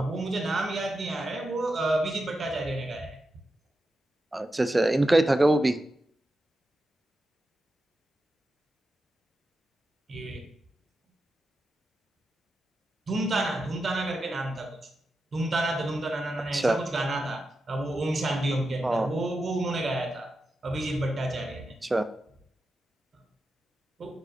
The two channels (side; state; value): both; normal; correlation 0.89